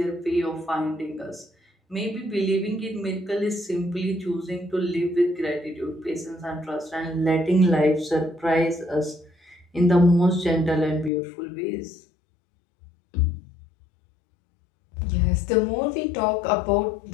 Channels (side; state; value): right; drops out; at 11.1 s